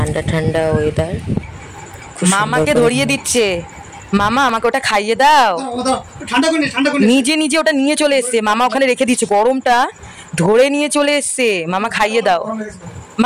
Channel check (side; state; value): both; identical; correlation 1.00